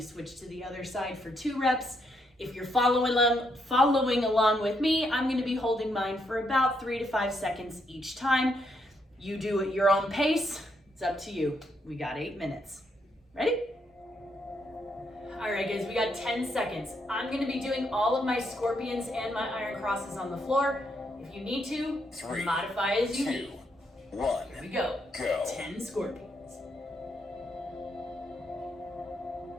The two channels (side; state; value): both; normal; correlation 0.77